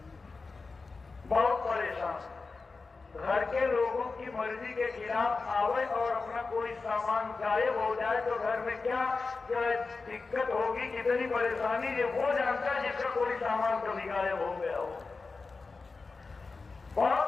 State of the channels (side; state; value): right; quieter; 4.1 dB